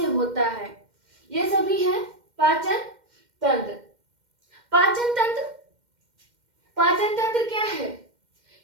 होता है, ये सभी है पाचन तंत्र। पाचन तंत्र पाचन तंत्र क्या है?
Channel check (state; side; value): late; left; 2.1 ms